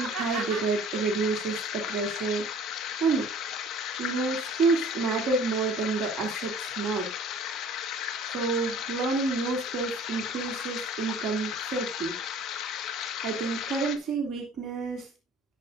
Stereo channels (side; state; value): both; normal; correlation 0.48